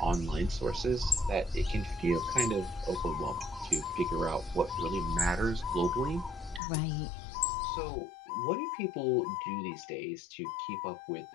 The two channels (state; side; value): drops out; right; at 6.6 s